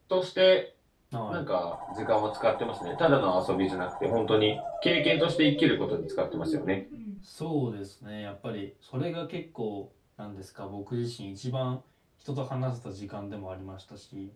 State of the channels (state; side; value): identical; both; correlation 1.00